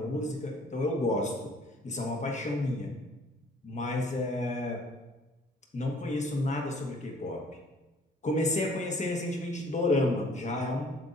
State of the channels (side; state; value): both; normal; correlation 0.56